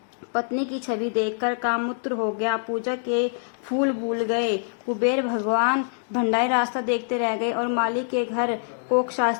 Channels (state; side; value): silent; right; digital silence